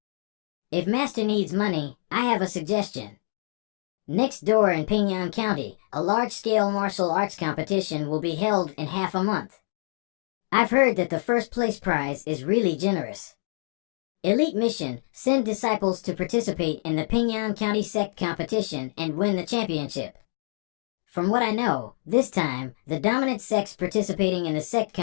If Master needs money, I have a suggestion. Next door in Pingyang County, a large-scale martial arts competition will be held in half a month. I've heard that the first place prize is really generous. Elite mission, send disciples to participate in the Pingyang County Sect competition and win the championship. From what I know, this time, the dominant sects participating in the Sect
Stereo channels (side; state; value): right; silent; digital silence